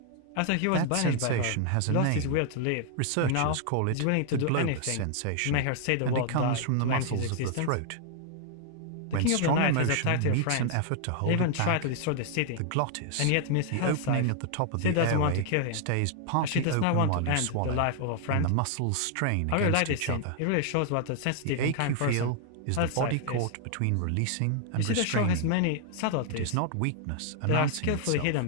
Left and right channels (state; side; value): different; both; correlation 0.00